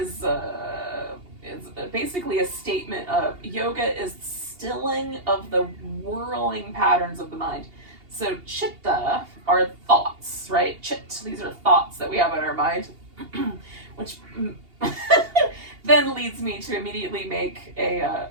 basically a statement of yoga is stilling of the whirling patterns of the mind. So chitta are thoughts, right? These are thoughts that we have in our mind, which then leads me to immediately make a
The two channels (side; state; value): left; late; 2.8 ms